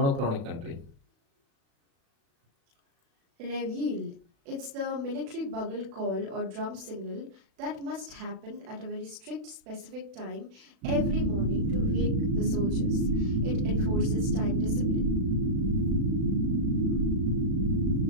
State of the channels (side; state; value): left; late; 36 ms